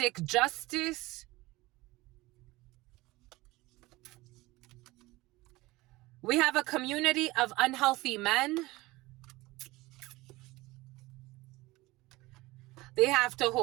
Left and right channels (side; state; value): left; quieter; 20.2 dB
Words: justice. We have a community of unhealthy men. They have to